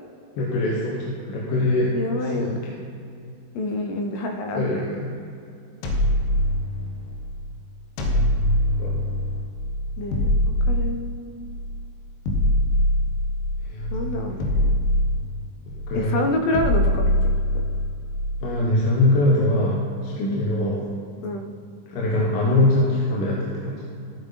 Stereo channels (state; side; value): late; right; 20 ms